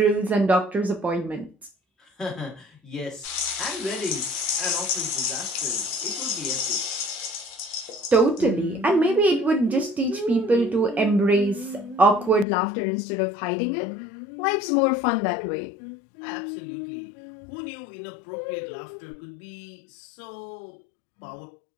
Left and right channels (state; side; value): drops out; right; at 12.5 s